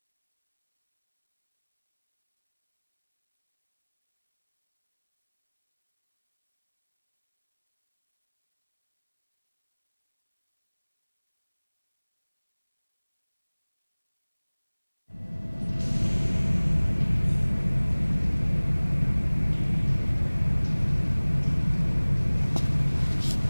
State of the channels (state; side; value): inverted; both; correlation -1.00